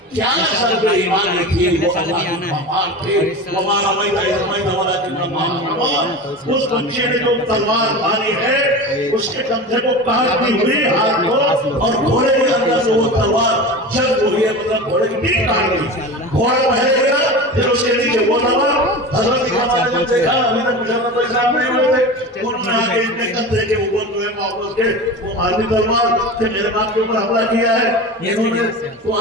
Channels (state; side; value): normal; both; correlation 0.30